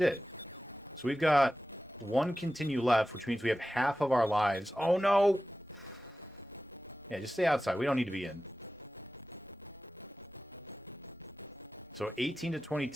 So we've got one continue left, which means we have half of our lives. Oh, no! Yeah, just stay outside. We don't need to be in. So 18 to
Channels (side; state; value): both; normal; correlation 0.94